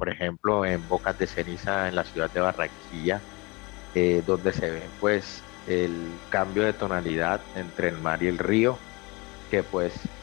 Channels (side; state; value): right; quieter; 26.0 dB